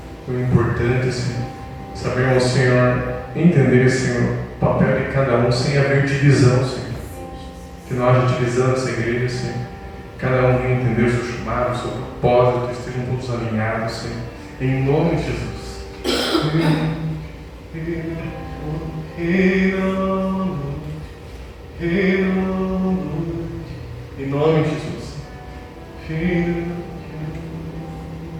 Foi importante, Senhor, sabermos, Senhor, entender, Senhor, o papel de cada um sem haver divisão, Senhor. Que não haja divisão nessa igreja, Senhor. Cada um venha entender o seu chamado, o seu propósito, que estejam todos alinhados, Senhor. Em nome de Jesus. Em nome de Jesus.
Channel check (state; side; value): identical; both; correlation 1.00